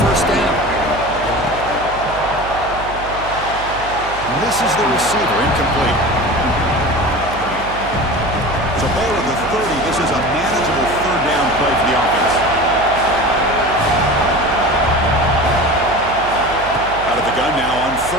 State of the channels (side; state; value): right; noise; hum, 13 dB below the sound